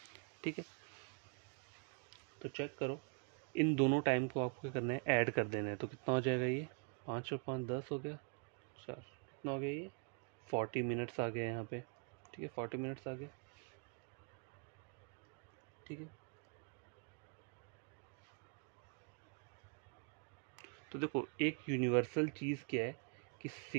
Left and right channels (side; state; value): left; quieter; 37.8 dB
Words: ठीक है, तो चेक करो, इन दोनों टाइम को आपको क्या करना है, ऐड कर देना है। तो कितना हो जाएगा ये, 5 और 5 10 हो गया, 4 कितना हो गया ये, 40 मिनट्स आ गए यहाँ पे। ठीक है, 40 मिनट्स आ गए। ठीक है, तो देखो एक यूनिवर्सल चीज़ क्या है कि